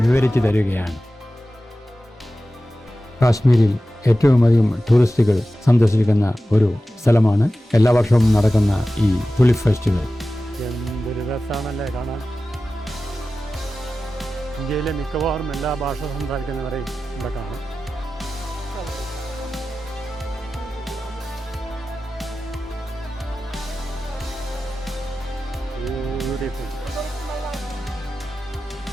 വിവരിച്ചു തരികയാണ്. കാശ്മീരിൽ ഏറ്റവും അധികം ടൂറിസ്റ്റുകൾ സന്ദർശിക്കുന്ന ഒരു സ്ഥലമാണ് എല്ലാ വർഷവും നടക്കുന്ന ഈ തുലിപ്പ് ഫെസ്റ്റിവൽ. എന്തൊരു രസമാണല്ലേ കാണാൻ. ഇന്ത്യയിലെ മിക്കവാറും എല്ലാ ഭാഷ സംസാരിക്കുന്നവരെയും ഇവിടെ കാണാം.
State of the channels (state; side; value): normal; both; correlation 0.95